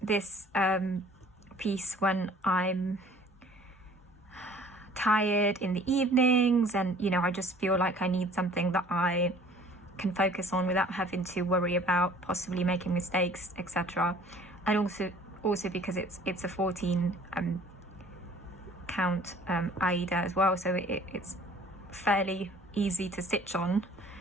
this piece when I'm tired in the evenings, and I just feel like I need something that I can focus on without having to worry about possibly making mistakes, etc. And also because it's a 14 count Aida as well, so it's fairly easy to stitch on,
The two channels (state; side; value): normal; both; correlation 0.52